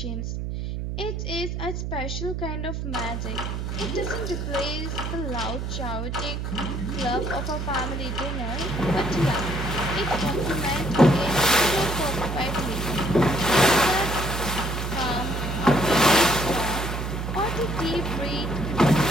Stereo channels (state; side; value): noise; right; hum, 4 dB below the sound